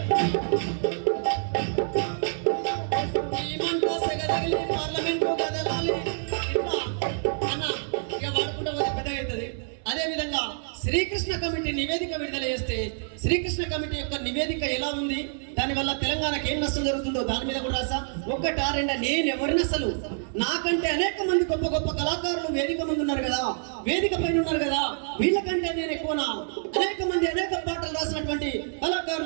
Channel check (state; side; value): silent; left; 60 dB below the other